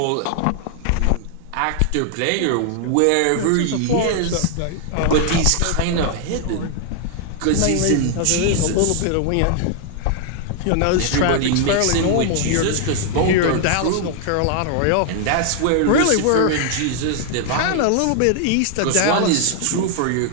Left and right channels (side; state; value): both; different; correlation 0.00